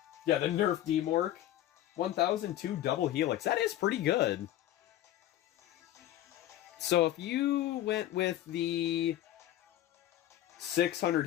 Yeah, the Nerf D-Mork. 1002 double helix. That is pretty good. So if you went with the 600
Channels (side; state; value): right; quieter; 13.1 dB